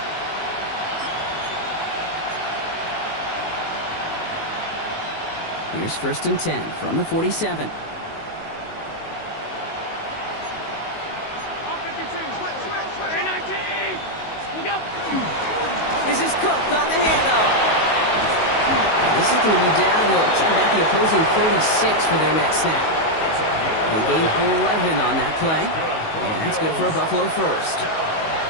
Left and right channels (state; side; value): late; right; 19 ms